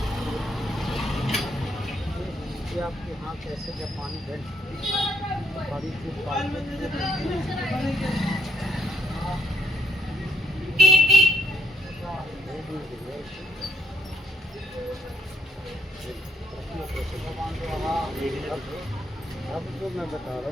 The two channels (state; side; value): normal; both; correlation 0.73